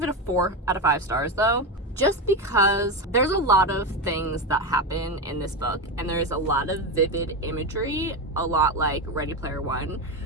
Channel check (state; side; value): normal; both; correlation 0.15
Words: it a 4 out of 5 stars though, just because there's a lot of things that happen in this book, and there's a lot of vivid imagery, a lot like Ready Player One,